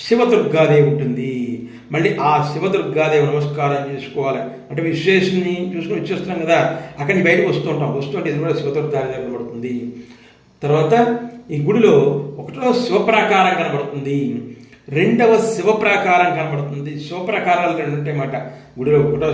శివదుర్గాదేవి ఉంటుంది. మళ్ళీ ఆ శివదుర్గాదేవి నమస్కారం చేసుకోవాలి. అంటే విశ్వేశ్వరుని చూసుకుని వచ్చేస్తున్నాం కదా, అక్కడి నుంచి బయటకు వస్తుంటే ఇది కూడా శివదుర్గాదేవి కనబడుతుంది. తర్వాత ఈ గుడిలో 1వ శివప్రాకారం కనబడుతుంది, 2వ శివప్రాకారం కనబడుతుంది. శివప్రాకారాలు 2 ఉంటాయన్నమాట గుడిలో. 1వ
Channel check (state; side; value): identical; both; correlation 1.00